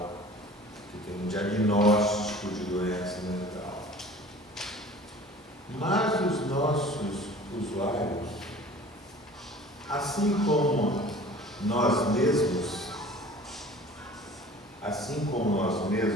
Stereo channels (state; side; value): normal; both; correlation 0.45